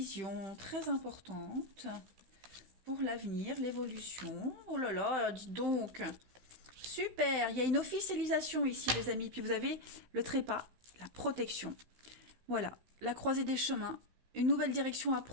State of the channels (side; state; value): left; late; 15 ms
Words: très importante pour l'avenir, l'évolution. Oh là là, dites donc, super, il y a une officialisation ici, les amis. Puis vous avez le trépas, la protection. Voilà, la croisée des chemins, une nouvelle direction à